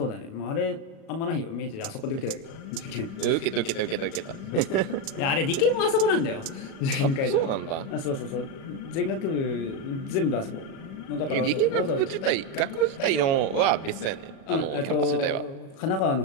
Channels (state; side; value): late; right; 37 ms